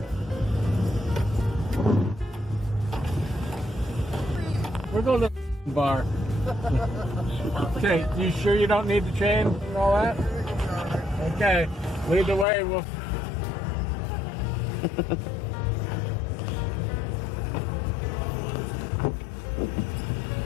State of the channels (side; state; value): right; drops out; at 12.5 s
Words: going to the bar. Okay, you sure you don't need the chain and all that? Okay, lead the way. We'll.